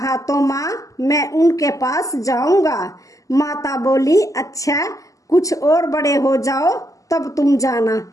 तो माँ मैं उनके पास जाऊंगा। माता बोली अच्छा कुछ और बड़े हो जाओ तब तुम जाना।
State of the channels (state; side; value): late; right; 0.16 ms